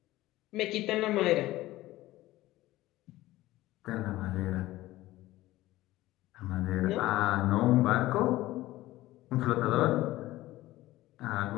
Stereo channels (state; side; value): quieter; right; 16.8 dB